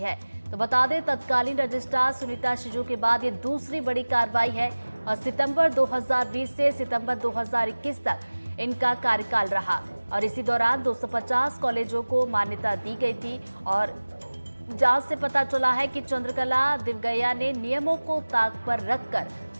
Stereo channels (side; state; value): both; inverted; correlation -1.00